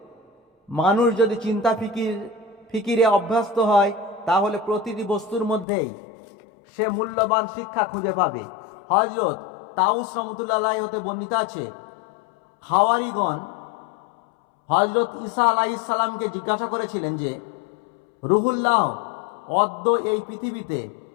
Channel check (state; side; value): drops out; right; at 5.7 s